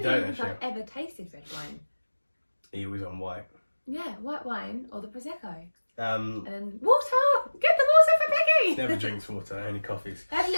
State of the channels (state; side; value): inverted; both; correlation -1.00